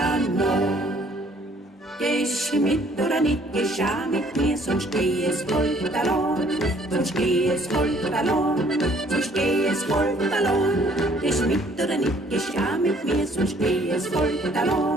Nacht. Gehst du mit oder nicht, gehst auch mit mir, sonst geh es halt allein, sonst geh es halt allein, sonst geh es halt allein. Gehst du mit oder nicht, gehst auch mit mir, sonst geh es halt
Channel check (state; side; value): normal; both; correlation 0.60